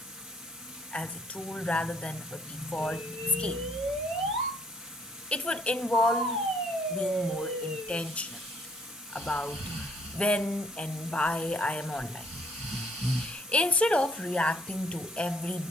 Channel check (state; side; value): normal; both; correlation 0.64